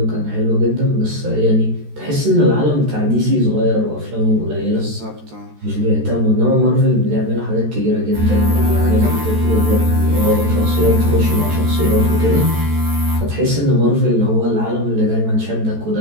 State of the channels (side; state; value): left; late; 14 ms